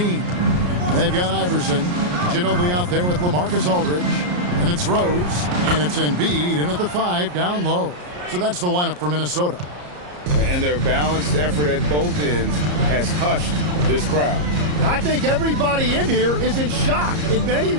They've got Iverson. Ginobili out there with LaMarcus Aldridge. And it's Rose. And it's Embiid in at the 5 down low. So that's the lineup for Minnesota. And their balanced effort at both ends has hushed this crowd. I think everybody in here is in shock. In many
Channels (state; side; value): late; left; 34 ms